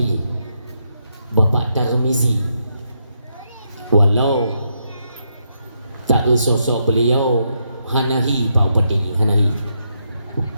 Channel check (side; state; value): both; inverted; correlation -0.80